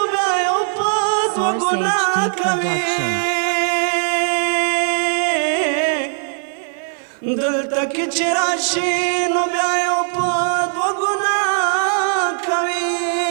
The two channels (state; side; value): silent; left; 60 dB below the other